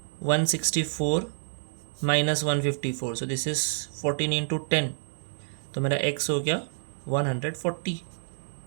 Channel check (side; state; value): left; silent; 58 dB below the other